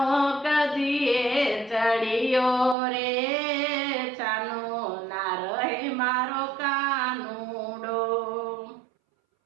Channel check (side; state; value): left; drops out; at 2.8 s